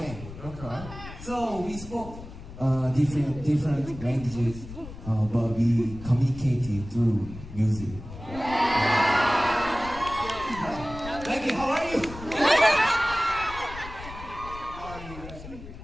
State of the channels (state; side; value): noise; left; rumble, 13 dB below the sound